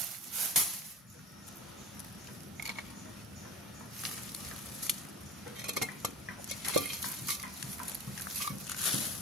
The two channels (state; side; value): normal; both; correlation 0.33